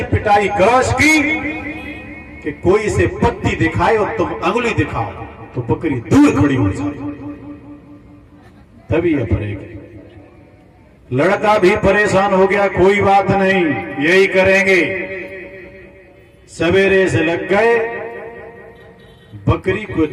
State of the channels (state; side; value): identical; both; correlation 1.00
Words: पिटाई करो इसकी कि कोई इसे पत्ती दिखाए और तुम अंगुली दिखाओ तो बकरी दूर खड़ी हो जाए, तभी ये पड़ेगी। लड़का भी परेशान हो गया, कोई बात नहीं, यही करेंगे। सवेरे से लग गए, बकरी को